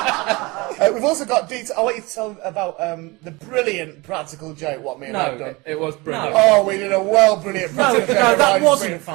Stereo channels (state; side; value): quieter; left; 24.3 dB